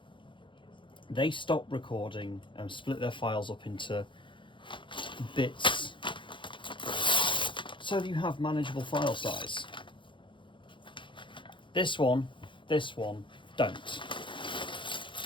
they stop recording and split their files up into bits so that you have manageable file size. This one don't.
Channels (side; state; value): right; late; 0.24 ms